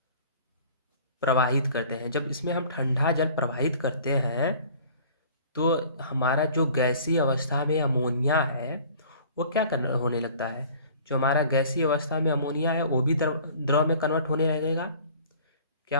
प्रवाहित करते हैं। जब इसमें हम ठंडा जल प्रवाहित करते हैं तो हमारा जो गैसीय अवस्था में अमोनिया है वो क्या करना होने लगता है, जो हमारा गैसीय अवस्था में अमोनिया है वो भी द्रव द्रव में कन्वर्ट होने लगेगा।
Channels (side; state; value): both; inverted; correlation -0.49